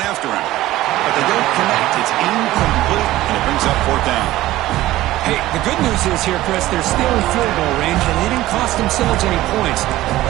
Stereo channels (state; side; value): quieter; left; 16.1 dB